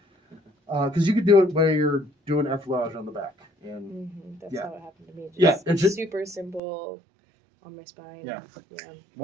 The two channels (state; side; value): drops out; left; at 6.6 s